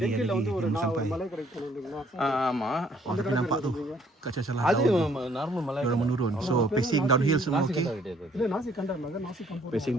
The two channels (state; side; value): normal; both; correlation 0.63